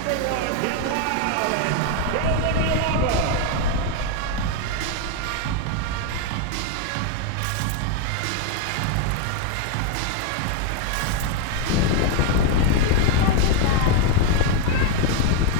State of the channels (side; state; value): both; different; correlation 0.01